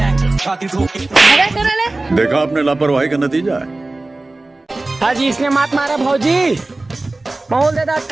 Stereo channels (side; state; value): left; quieter; 3.0 dB